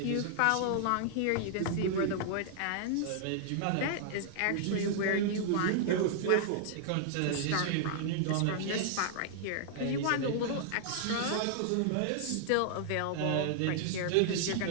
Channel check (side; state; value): both; different; correlation -0.01